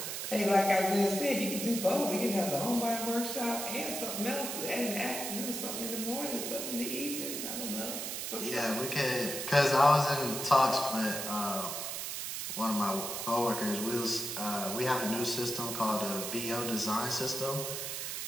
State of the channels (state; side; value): noise; right; hiss, 4 dB below the sound